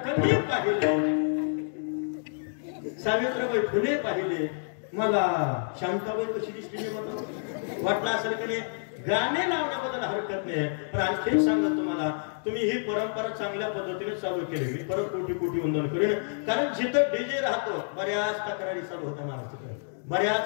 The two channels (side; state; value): right; silent; digital silence